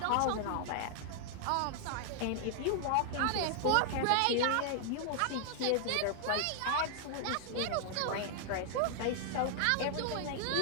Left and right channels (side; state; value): both; different; correlation 0.00